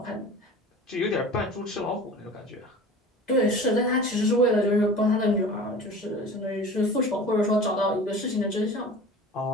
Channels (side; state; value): both; normal; correlation 0.39